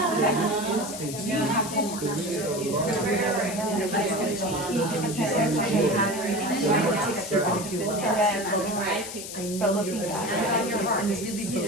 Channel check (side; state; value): left; noise; hiss, 9 dB below the sound